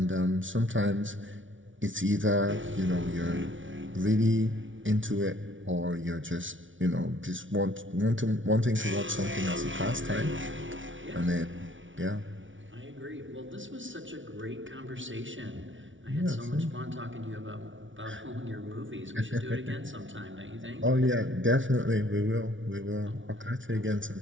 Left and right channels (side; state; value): left; late; 0.56 ms